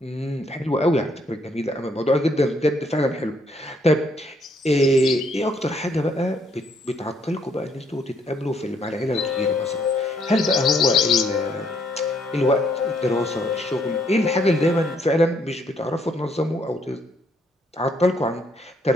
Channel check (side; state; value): both; normal; correlation 0.69